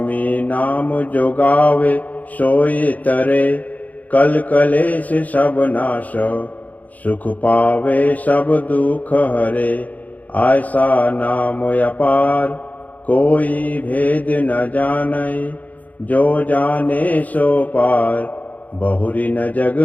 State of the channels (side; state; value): right; late; 0.077 ms